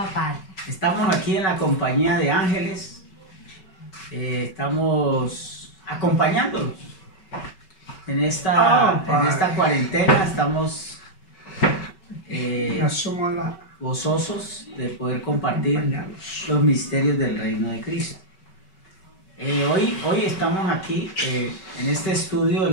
Padre. Estamos aquí en la compañía de ángeles, estamos acompañándolos en esta cuarentena, estamos asumo la gozosos de poder compartir acompañados. los misterios del reino de Cristo. Hoy estamos aquí en este estudio de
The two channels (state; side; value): late; right; 5.3 ms